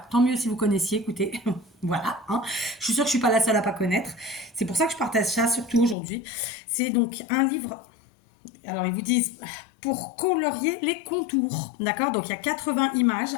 tant mieux si vous connaissiez, écoutez. Voilà, hein. Je suis sûre que je suis pas la seule à pas connaître. C'est pour ça que je partage ça, surtout aujourd'hui. C'est donc un livre Alors, ils vous disent pour colorier les contours. D'accord? Donc, il y a 80 images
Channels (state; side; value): drops out; right; at 6.0 s